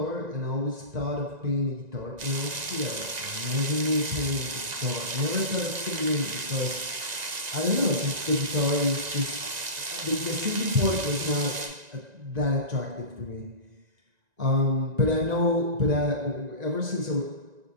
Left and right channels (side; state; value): left; late; 1.9 ms